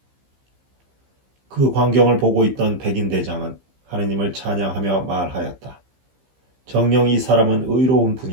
그 광경을 보고 있던 백인 대장은 하느님을 찬양하며 말하였다. 정녕 이 사람은 의로운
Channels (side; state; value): left; late; 15 ms